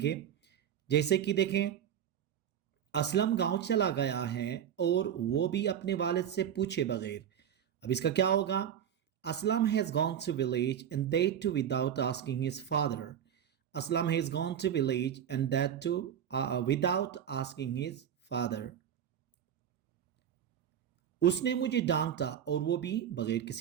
जैसे कि देखें, असलम गांव चला गया है और वो भी अपने वालिद से पूछे बगैर. अब इसका क्या होगा, Aslam has gone to village and that too without asking his father. Aslam has gone to village and that too without asking his father. उसने मुझे डांटा और वो भी बगैर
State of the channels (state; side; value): quieter; left; 9.3 dB